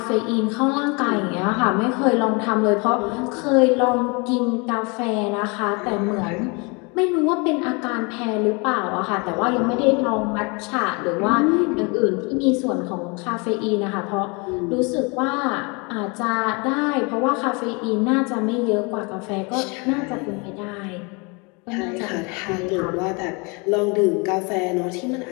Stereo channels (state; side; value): quieter; right; 30.2 dB